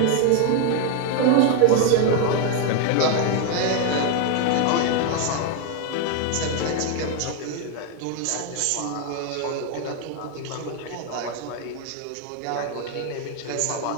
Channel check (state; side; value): different; both; correlation 0.01